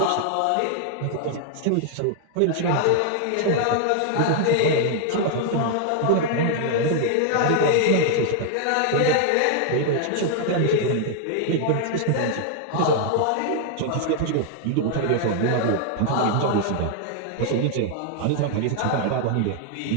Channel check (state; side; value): different; both; correlation 0.00